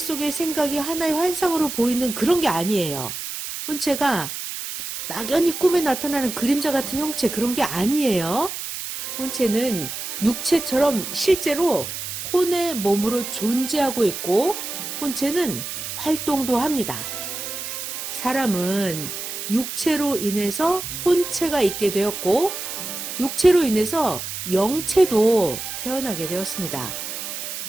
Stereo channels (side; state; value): right; noise; hiss, 6 dB below the sound